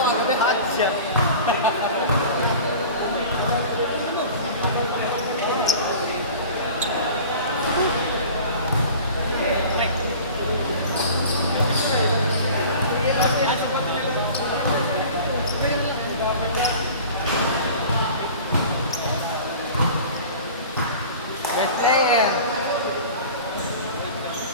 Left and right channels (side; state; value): both; inverted; correlation -0.40